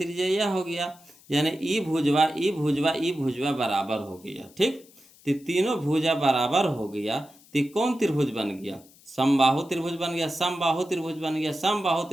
यह हो गया, यानी ई भुजवा बराबर हो गया। ठीक, तो तीनों भुजा बराबर हो गया, तो कौन त्रिभुज बन गया, समबाहु त्रिभुज बन गया, समबाहु त्रिभुज बन गया, समबाहु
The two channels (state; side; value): noise; left; hiss, 26 dB below the sound